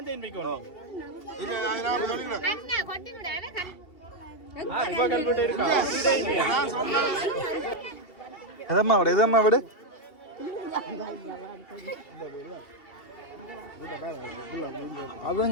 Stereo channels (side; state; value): right; late; 2.8 ms